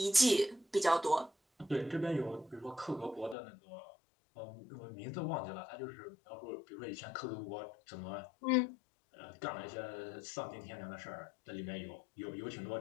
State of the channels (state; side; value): drops out; right; at 3.4 s